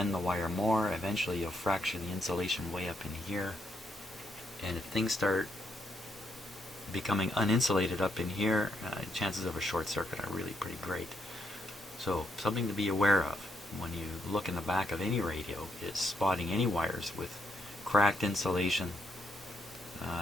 the wire more. Eventually you'll fracture the insulation way up in here. And if things start becoming uninsulated up in here, chances of a short circuit are really pretty great. So something to be aware of when you look in the back of any radio is spotting any wires with cracked insulation,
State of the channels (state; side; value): normal; both; correlation 0.78